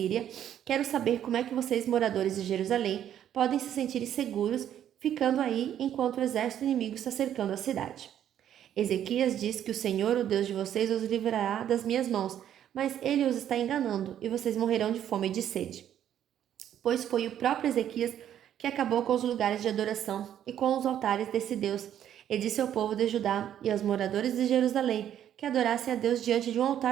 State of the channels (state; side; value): quieter; left; 10.4 dB